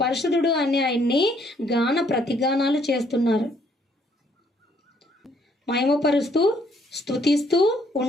పరిశుద్ధుడు అని ఆయన్ని గాన ప్రతిగానాలు చేస్తున్నారు. మహిమపరుస్తూ స్తుతిస్తూ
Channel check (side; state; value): both; normal; correlation 0.67